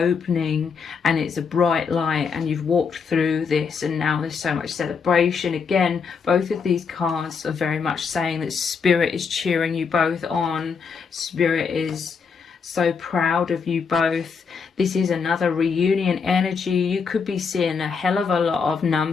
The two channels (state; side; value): quieter; right; 5.7 dB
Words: and it's a bright light, and you've walked through this, and now there's so much celebration. Again, both of these cards are very much saying that Spirit is cheering you both on. Spirit is so proud of you both. This is another reunion energy. You could be seeing a hell of a lot of